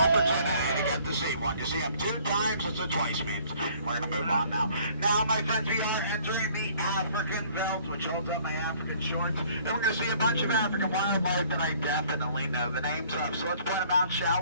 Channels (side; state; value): both; inverted; correlation -0.57